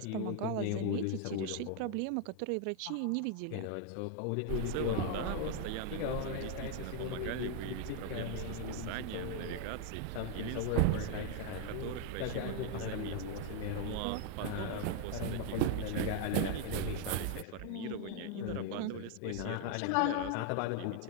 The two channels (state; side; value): different; both; correlation 0.00